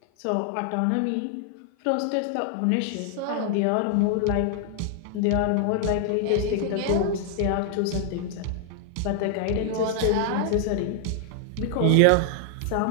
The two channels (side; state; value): both; different; correlation 0.00